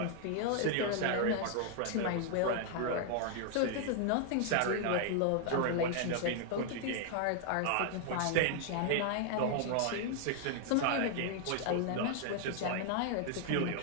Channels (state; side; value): different; both; correlation 0.00